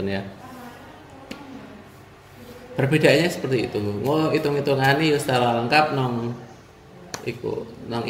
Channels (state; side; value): identical; both; correlation 1.00